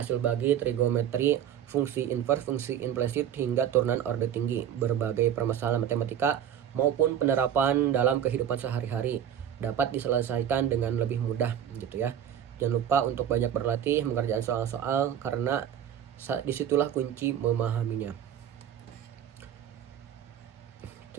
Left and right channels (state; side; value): quieter; left; 9.6 dB